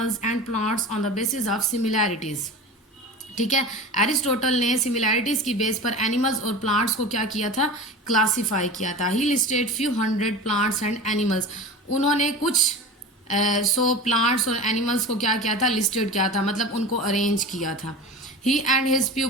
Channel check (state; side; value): normal; both; correlation 0.32